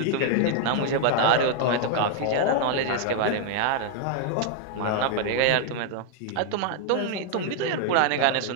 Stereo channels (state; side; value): different; both; correlation 0.00